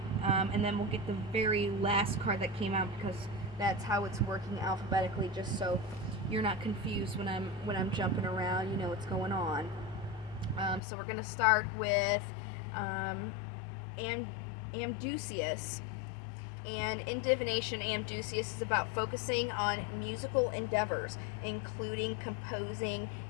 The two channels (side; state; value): right; drops out; at 10.8 s